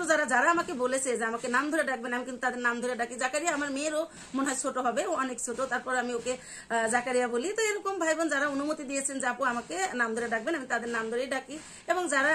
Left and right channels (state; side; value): identical; both; correlation 1.00